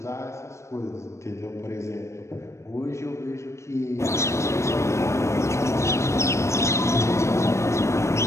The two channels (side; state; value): right; late; 0.14 ms